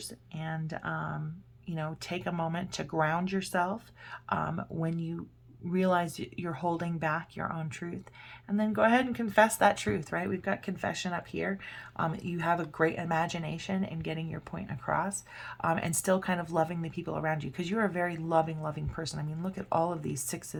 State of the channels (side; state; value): both; identical; correlation 1.00